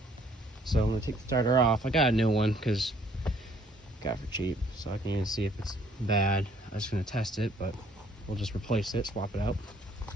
So I'm gonna take the starter off. I got a new one because got it for cheap, so I can even see if it's bad. I was gonna test it, but we'll just replace it, swap it out.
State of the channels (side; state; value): both; normal; correlation 0.62